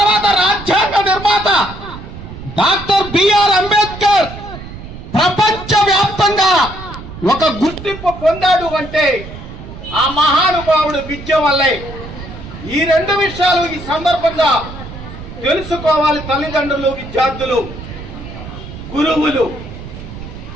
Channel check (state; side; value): noise; right; rumble, 13 dB below the sound